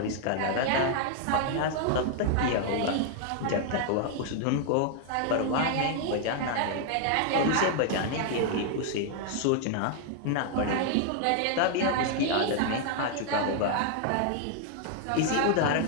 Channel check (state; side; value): different; both; correlation 0.00